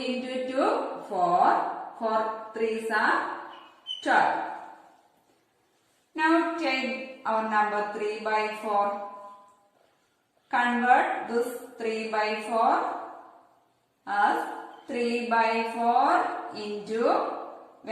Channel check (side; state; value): both; identical; correlation 1.00